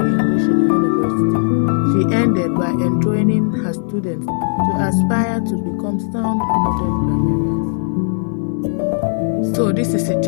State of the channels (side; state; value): right; silent; 68 dB below the other